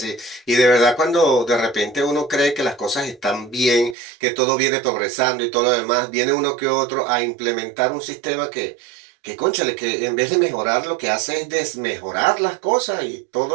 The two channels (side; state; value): left; drops out; at 4.0 s